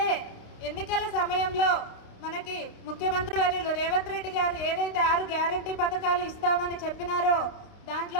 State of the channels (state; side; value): late; right; 29 ms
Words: ఎన్నికల సమయంలో మనకి ముఖ్యమంత్రి వర్యులు రేవంత్ రెడ్డి గారు ఏదైతే 6 గ్యారంటీ పథకాలు ఇస్తామని చెప్పినారో